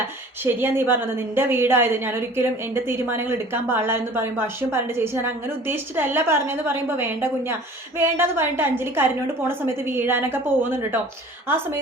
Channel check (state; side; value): normal; both; correlation 0.46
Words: ശരിയാ നീ പറഞ്ഞത്, നിന്റെ വീടായത്, ഞാനൊരിക്കലും എൻ്റെ തീരുമാനങ്ങൾ എടുക്കാൻ പാടില്ല എന്ന് പറയുമ്പോൾ അശ്വിൻ പറയേണ്ട ചേച്ചി ഞാൻ അങ്ങനെ ഉദ്ദേശിച്ചിട്ടല്ല പറഞ്ഞതെന്ന് പറയുമ്പോൾ വേണ്ട കുഞ്ഞ വേണ്ടെന്ന് പറഞ്ഞിട്ട് അഞ്ജലി കരഞ്ഞോണ്ട് പോണ സമയത്ത് വീഴാനൊക്കെ പോകുന്നുണ്ട് കേട്ടോ. ആ